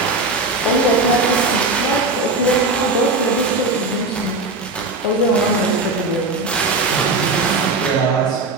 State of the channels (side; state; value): left; quieter; 3.2 dB